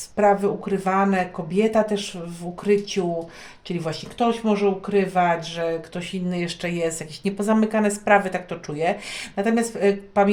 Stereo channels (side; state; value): both; identical; correlation 1.00